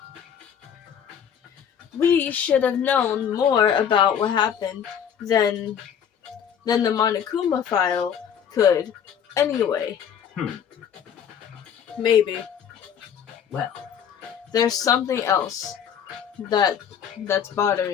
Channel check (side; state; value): right; quieter; 8.4 dB